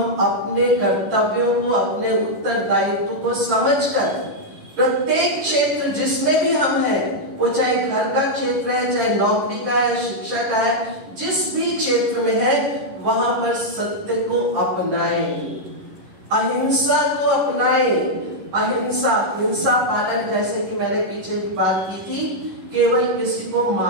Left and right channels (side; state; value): left; late; 11 ms